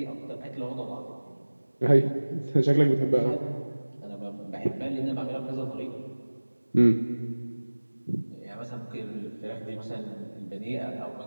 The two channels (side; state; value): both; inverted; correlation -1.00